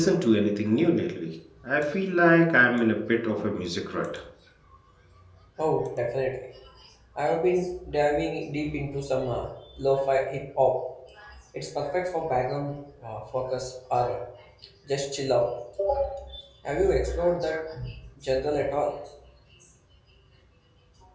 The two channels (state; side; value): identical; both; correlation 1.00